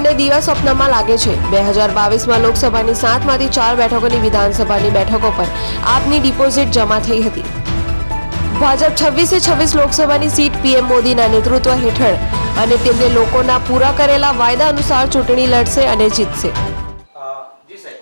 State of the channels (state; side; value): inverted; both; correlation -1.00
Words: દિવા સ્વપ્નમાં લાગે છે. 2022માં લોકસભાની 7માંથી 4 બેઠકોની વિધાનસભાની બેઠકો પર આપની ડિપોઝિટ જમા થઈ હતી. ભાજપ 26 લોકસભાની સીટ પીએમ મોદીના નેતૃત્વ હેઠળ અને તેમને લોકોના પૂરા કરેલા વાયદા અનુસાર ચૂંટણી લડશે અને જીતશે.